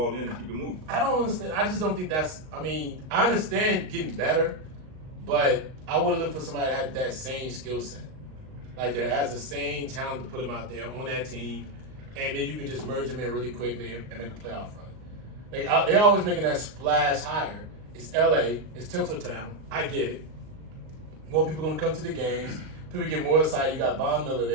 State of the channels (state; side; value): late; left; 38 ms